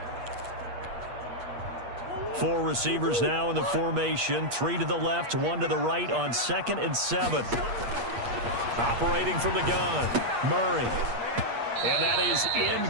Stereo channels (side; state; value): left; late; 8.5 ms